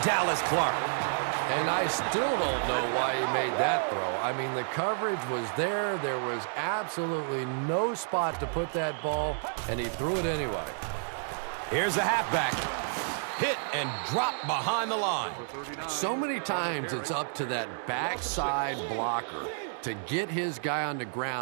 Dallas Clark. And I still don't know why he made that throw. I mean, the coverage was there. There was absolutely no spot to put that ball, and he threw it anyway. Here's a halfback. Hit and drop behind the line. So many times it's up to that backside blocker to get his guy on the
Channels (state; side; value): silent; left; digital silence